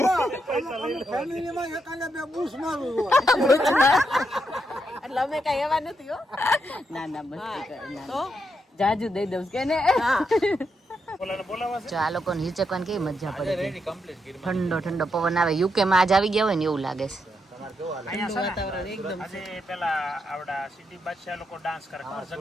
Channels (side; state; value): both; normal; correlation 0.82